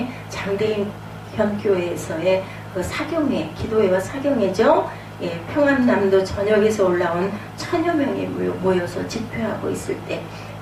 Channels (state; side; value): identical; both; correlation 1.00